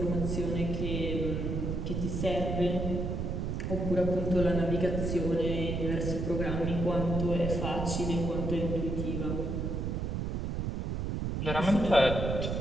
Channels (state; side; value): noise; right; rumble, 1 dB below the sound